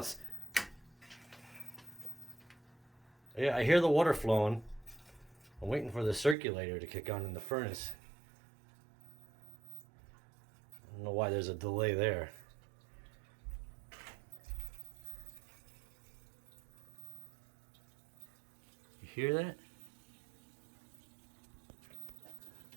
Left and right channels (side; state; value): left; drops out; at 6.4 s